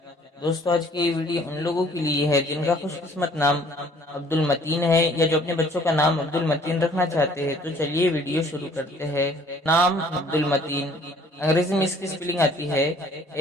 دوستو آج کی یہ ویڈیو ان لوگوں کے لیے ہے جن کا خوش قسمت نام عبد المتین ہے یا جو اپنے بچوں کا نام عبد المتین رکھنا چاہتے ہیں۔ تو چلیے ویڈیو شروع کرتے ہیں۔ نام عبد المتین، انگریزی میں اس کی سپیلنگ آتی ہے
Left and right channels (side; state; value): both; normal; correlation 0.57